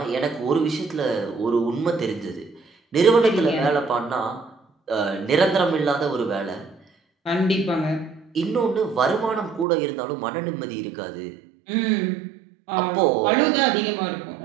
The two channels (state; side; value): drops out; left; at 9.7 s